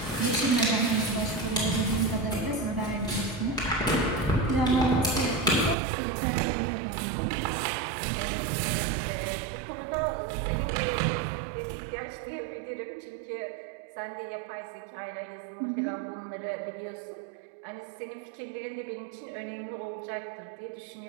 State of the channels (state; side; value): drops out; left; at 5.8 s